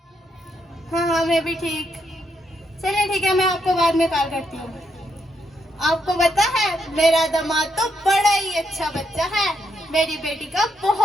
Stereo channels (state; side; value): normal; both; correlation 0.78